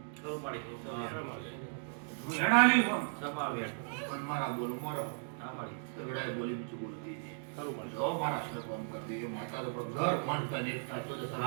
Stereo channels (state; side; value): silent; left; digital silence